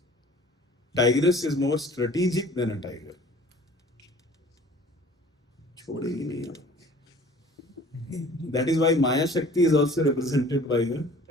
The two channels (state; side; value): normal; both; correlation 0.49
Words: tigress is more strategic than a tiger. छोड़ेगी नहीं आप. That is why Maya Shakti is also represented by the